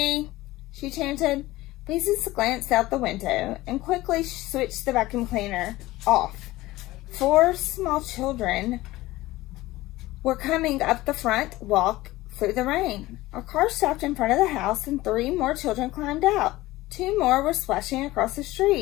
she chanted. Beezus glanced out the window and quickly switched the vacuum cleaner off. 4 small children were coming up the front walk through the rain. A car stopped in front of the house and 3 more children climbed out. 2 more were splashing across the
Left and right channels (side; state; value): right; quieter; 18.0 dB